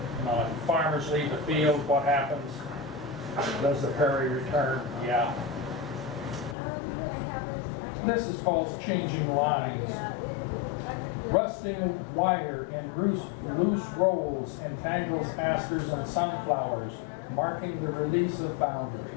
farmers leave the field. What happens? Does the prairie return? Yeah. This is called Changing Lines. Rusting wire in loose rolls entangles asters and sunflowers, marking the release of boundaries.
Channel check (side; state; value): right; drops out; at 6.6 s